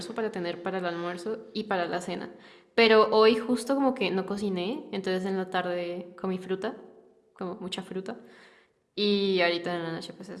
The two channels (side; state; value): both; identical; correlation 1.00